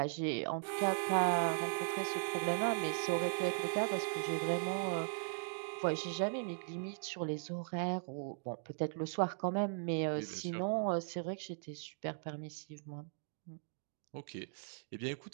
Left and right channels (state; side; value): silent; left; digital silence